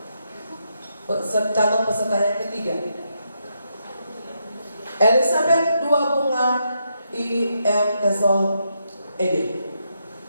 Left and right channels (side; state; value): both; inverted; correlation -0.81